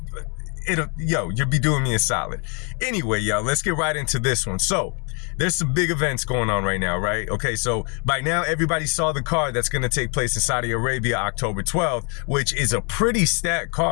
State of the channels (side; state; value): right; quieter; 36.2 dB